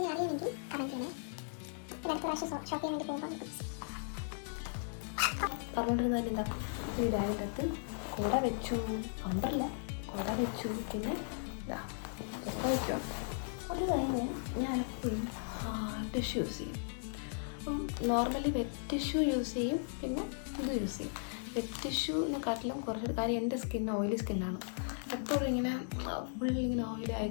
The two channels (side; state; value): right; silent; digital silence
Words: അറിയണമെങ്കിൽ കമൻറ്റ് ചെയ്യണേ. പിന്നെ അടുത്ത പ്രാവശ്യം ഷോപ്പ് ചെയ്യാൻ വേണ്ടി പോകുമ്പോൾ പറഞ്ഞുകൊണ്ടിരുന്നതിൽ എന്താ, ഈ ബാഗിൻ്റെ അകത്ത് കുട വെച്ചു, അമ്പറില്ല, കുട വെച്ചു, പിന്നെ വയ്ക്കുക. അത് കഴിഞ്ഞ് ഞാൻ എപ്പോഴും ടിഷ്യൂ യൂസ് ചെയ്യും. അപ്പം നോർമലി വെറ്റ് ടിഷ്യൂ യൂസ് ചെയ്യും, പിന്നെ ഇത് യൂസ് ചെയ്യും. വെറ്റ് ടിഷ്യൂവിനെക്കാട്ടിലും കുറച്ചൊരു കാര്യം, എൻ്റെ സ്കിൻ ഓയിലി സ്കിന്നാണ്. എപ്പോഴും ഇങ്ങനെ ഫുള്ളിങ്ങനെ ഓയിലി